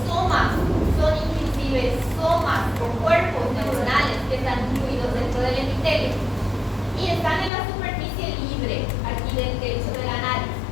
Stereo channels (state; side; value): drops out; right; at 7.5 s